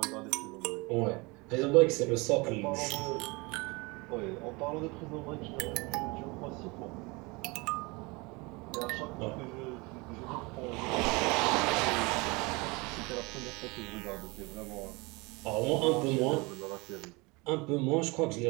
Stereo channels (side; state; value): left; quieter; 26.1 dB